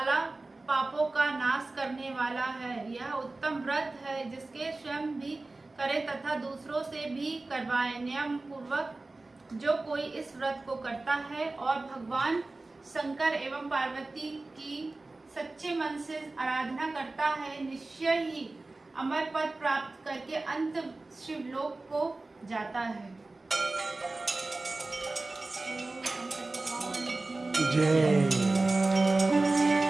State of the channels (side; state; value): left; quieter; 3.2 dB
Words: पापों का नाश करने वाला है। यह उत्तम व्रत है जिसके स्वयं भी करे तथा दूसरों से भी करवाए। नियम पूर्वक जो कोई इस व्रत को करता है और भगवान शंकर एवं पार्वती की सच्चे मन से आराधना करता है, निश्चय ही अमर पद प्राप्त करके अंत शिवलोक को जाता है। जय।